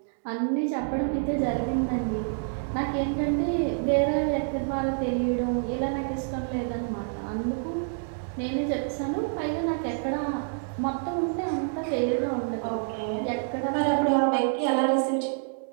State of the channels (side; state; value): left; silent; digital silence